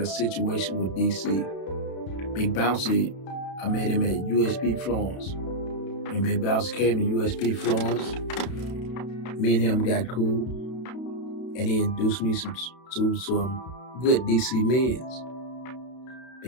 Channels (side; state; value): right; late; 32 ms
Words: situation with DC, Big Bouncy, I met him at USP Florence. When Big Bouncy came to USP Florence, me and him got cool, and he introduced me to some good DC men's.